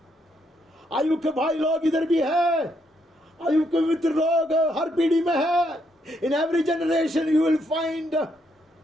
आयु के भाई लोग इधर भी है, आयु के मित्र लोग हर पीढ़ी में है. In every generation you will find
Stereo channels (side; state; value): both; normal; correlation 0.75